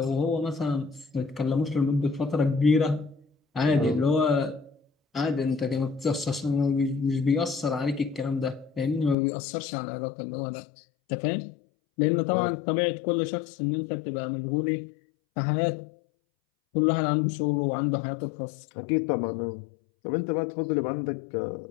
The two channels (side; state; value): right; drops out; at 9.2 s